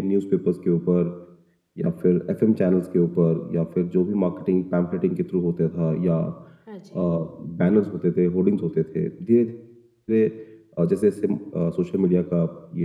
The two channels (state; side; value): identical; both; correlation 1.00